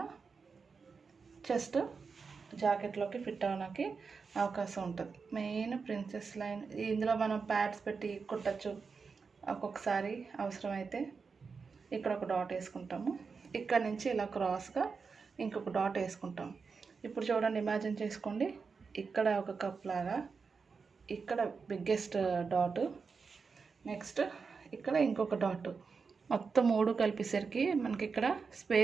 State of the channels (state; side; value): quieter; left; 5.1 dB